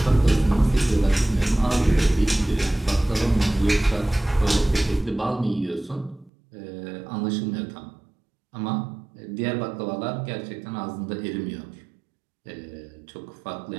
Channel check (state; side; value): drops out; left; at 6.3 s